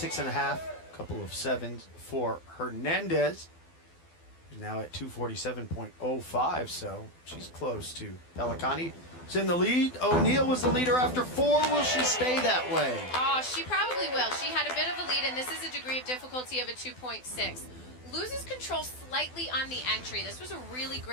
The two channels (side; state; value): right; late; 12 ms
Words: couple of 7s for Hernandez. She's now at 247.05, so she's close to Pellicani. She's in the lead. O'Neill was the leader after 4. Will she stay that way? Oh, she probably will. She had a bit of a lead, and this is a degree of difficulty of a 2.6. Loses control slightly on the entry. This was a really